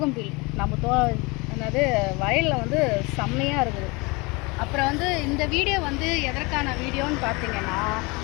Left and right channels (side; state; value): right; quieter; 26.4 dB